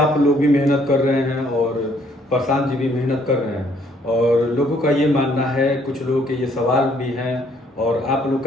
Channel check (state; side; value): normal; both; correlation 0.65